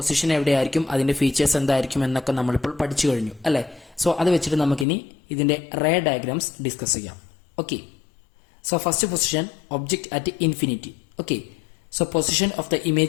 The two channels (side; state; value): right; drops out; at 4.9 s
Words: എവിടെയായിരിക്കും, അതിന്റെ ഫീച്ചേഴ്സ് എന്തായിരിക്കും എന്നൊക്കെ നമ്മളിപ്പോൾ പഠിച്ചു കഴിഞ്ഞു, അല്ലെ? സോ അത് വെച്ചിട്ട് നമുക്കിനി ഇതിന്റെ റേ ഡയഗ്രാംസ് ഡിസ്കസ് ചെയ്യാം. Okay, so first position object at infinity. Okay, so position of the